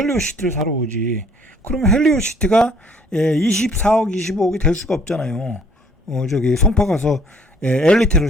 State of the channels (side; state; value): both; normal; correlation 0.59